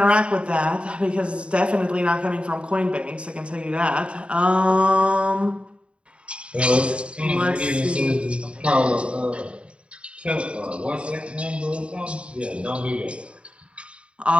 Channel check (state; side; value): late; left; 0.057 ms